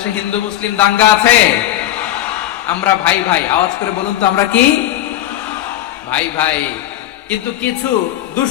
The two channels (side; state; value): right; quieter; 13.2 dB